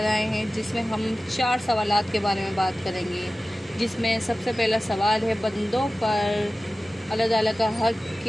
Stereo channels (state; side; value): normal; both; correlation 0.96